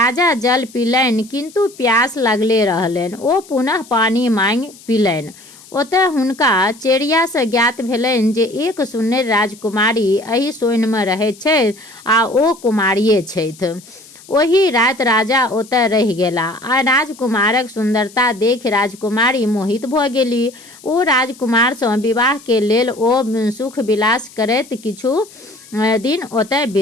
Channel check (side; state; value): left; noise; hiss, 22 dB below the sound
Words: जल पीलनि किंतु प्यास लगले रहलनि। ओ पुनः पानी मांगि पीलनि। ओतय हुनका चेरिया से ज्ञात भेलनि जे एक सुन्नर राजकुमारी एहि सोइन में रहैत छथि आ ओ कुमारिये छथि। ओही रात राजा ओतय रहि गेला आ राजकुमारक सुंदरता देखि राजकुमारी मोहित भऽ गेली। ओ राजकुमार सँ विवाह के लेल ओ सुख विलास करैत किछु दिन ओतय